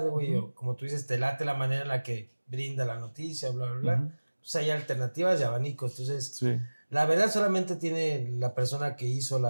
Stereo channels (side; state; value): both; inverted; correlation -1.00